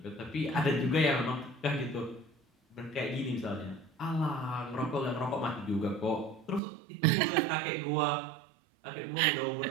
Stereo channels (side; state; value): left; drops out; at 6.6 s